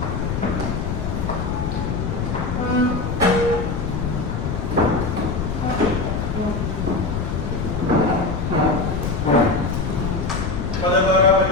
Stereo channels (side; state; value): left; noise; rumble, 2 dB below the sound